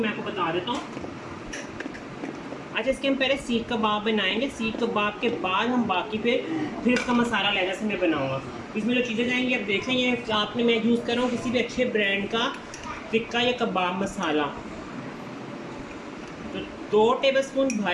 आपको बता देता हूँ। अच्छा, इसके हम पहले सीख कबाब बनाएंगे। सीख कबाब के बाद हम बाकी फिर इसका मसाला अलग से मैं बनाऊँगा। इसमें जो चीज़ें जाएंगी आप देख लें, ये आपने मैं यूज़ कर रहा हूँ किसी भी अच्छे ब्रांड का टिक्का या कबाब मसाला। तो 2 टेबलस्पून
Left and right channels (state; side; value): identical; both; correlation 1.00